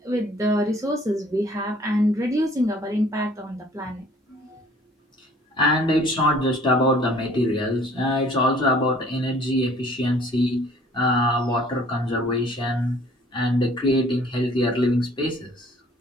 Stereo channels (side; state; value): both; normal; correlation 0.55